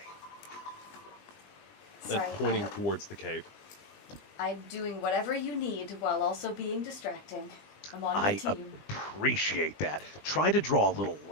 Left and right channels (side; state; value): right; late; 20 ms